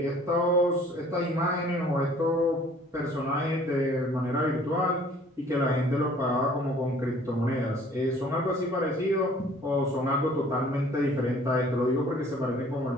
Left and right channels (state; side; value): normal; both; correlation 0.54